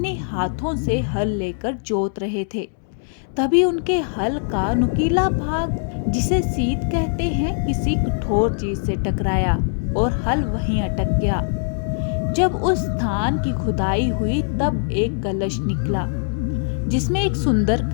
हाथों से हल लेकर जोत रहे थे। तभी उनके हल का नुकीला भाग, जिसे सीत कहते हैं, किसी कठोर चीज से टकराया और हल वहीं अटक गया। जब उस स्थान की खुदाई हुई तब एक कलश निकला, जिसमें एक सुंदर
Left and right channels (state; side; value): silent; right; digital silence